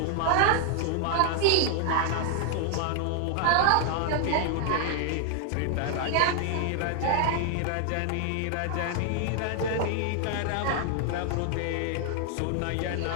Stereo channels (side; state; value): both; different; correlation 0.00